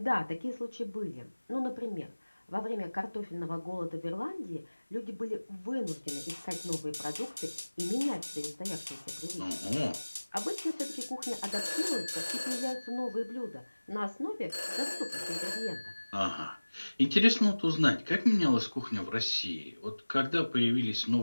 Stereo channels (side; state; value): both; inverted; correlation -1.00